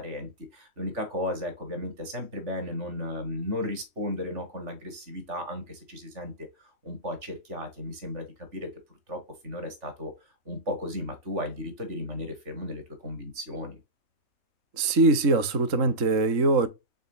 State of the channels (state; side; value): late; left; 3.1 ms